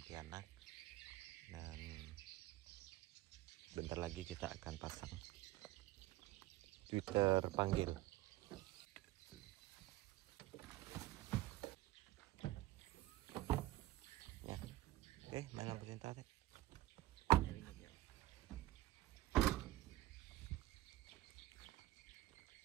dan bentar lagi kita akan pasang Twitter panggil. Ya, oke, mana perintah deh.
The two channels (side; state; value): left; quieter; 16.8 dB